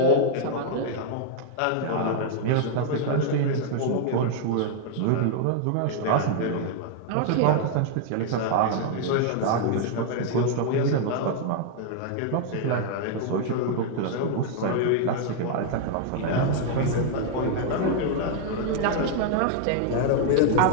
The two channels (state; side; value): different; both; correlation -0.01